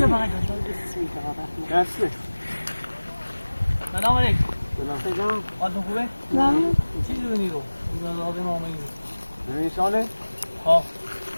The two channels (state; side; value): inverted; both; correlation -1.00